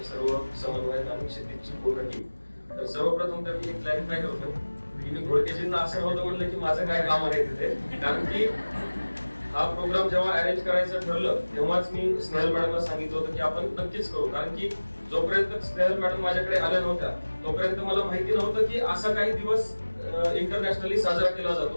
सर्व समन्वयक आणि क्षितिजची पूर्ण टीम. तर सर्वप्रथम तर मी एक क्लॅरिफाय करतो की मी घोडकेजींना असं नव्हतं म्हटलं की माझं काय काम आहे तिथे, कारण की हा प्रोग्राम जेव्हा अरेंज करायचं ठरलं तेव्हाच मी स्नेहल मॅडमला सांगितलं होतं की आपण नक्कीच करू. कारण की जोपर्यंत स्नेहल मॅडम माझ्याकडे आल्या नव्हत्या तोपर्यंत मला माहिती नव्हतं की असा काही दिवस इंटरनॅशनली साजरा केला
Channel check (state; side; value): inverted; both; correlation -1.00